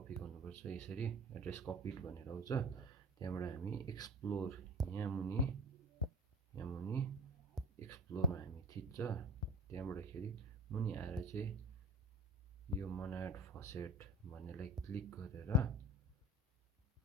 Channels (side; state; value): both; normal; correlation 0.37